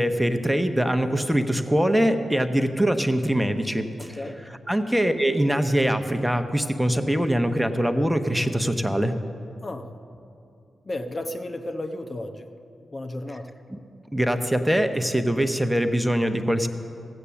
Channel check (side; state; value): both; normal; correlation 0.96